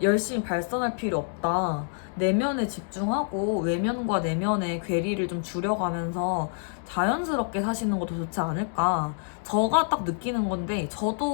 열심히 발산할 필요 없다. 내면에 집중하고 외면과 내면의 괴리를 좀 줄여가면서 자연스럽게 사시는 것도 좋지 않을까. 제가 딱 느끼는 건데,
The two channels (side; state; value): right; silent; 60 dB below the other